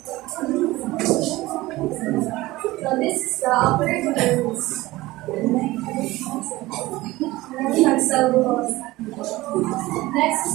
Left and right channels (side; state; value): left; quieter; 18.8 dB